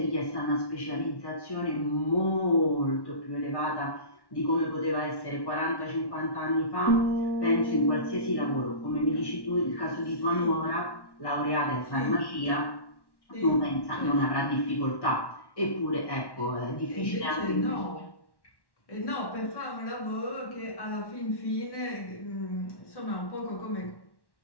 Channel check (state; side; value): late; right; 1.1 ms